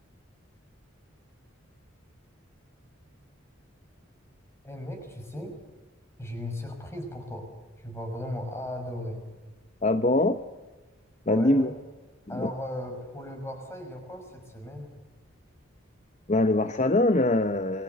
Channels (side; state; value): both; normal; correlation 0.49